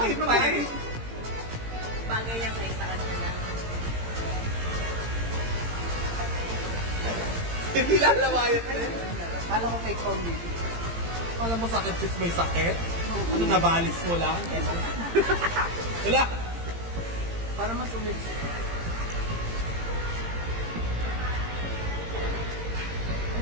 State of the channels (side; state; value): left; late; 18 ms